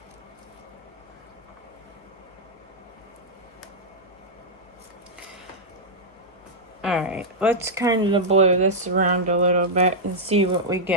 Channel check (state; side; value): normal; both; correlation -0.07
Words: Alright, let's kind of blow this around a little bit and see what we